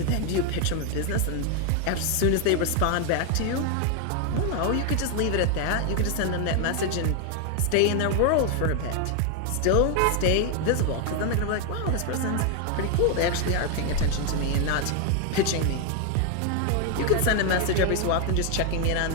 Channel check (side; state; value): both; different; correlation 0.01